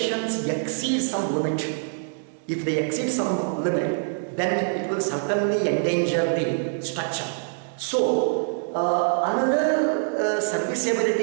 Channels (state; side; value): silent; left; digital silence